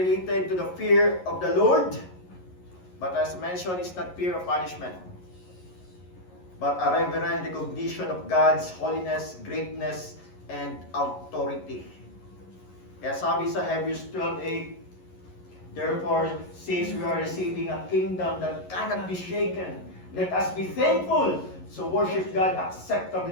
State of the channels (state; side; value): late; right; 11 ms